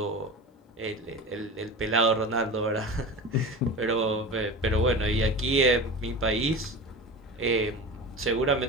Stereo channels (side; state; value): both; normal; correlation 0.30